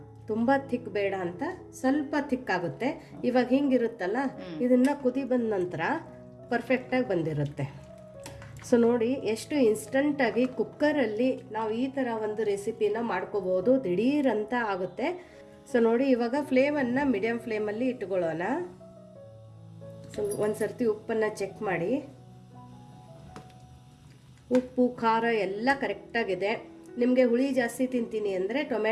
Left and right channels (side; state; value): both; identical; correlation 1.00